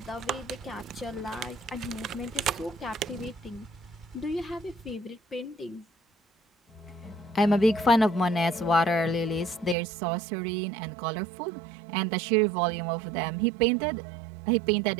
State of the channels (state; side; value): drops out; left; at 9.8 s